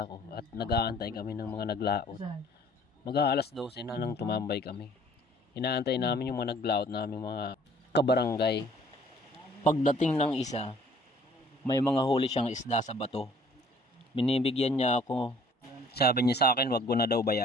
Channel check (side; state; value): both; normal; correlation 0.56